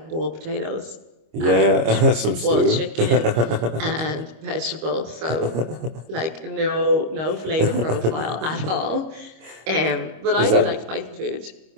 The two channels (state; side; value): late; left; 25 ms